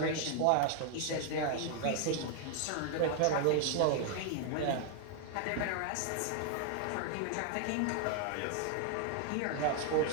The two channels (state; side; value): different; both; correlation 0.00